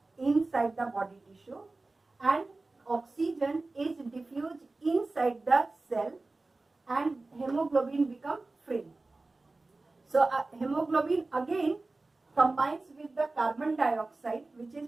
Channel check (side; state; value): left; quieter; 3.3 dB